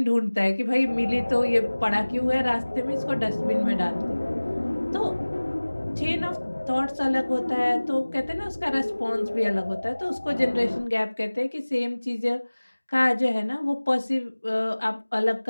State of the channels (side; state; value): both; inverted; correlation -1.00